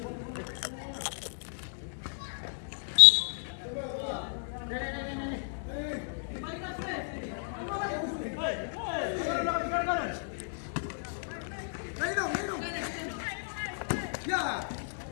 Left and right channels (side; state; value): right; silent; digital silence